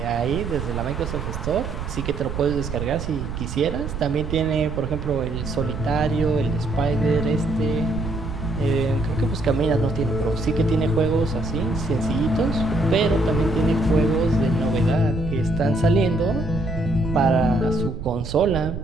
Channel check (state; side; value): noise; right; rumble, 6 dB below the sound